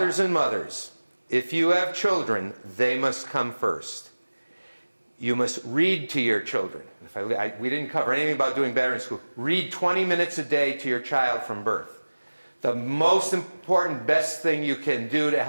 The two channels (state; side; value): inverted; both; correlation -1.00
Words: and mothers, if you have children, they must come first. You must read to your children. We didn't cover anything about doing better in school. Read 20 minutes a day to your child from birth. The most important, best thing you can do to